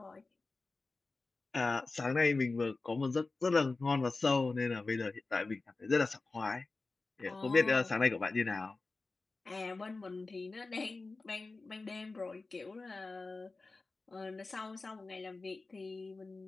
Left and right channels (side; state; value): right; quieter; 3.6 dB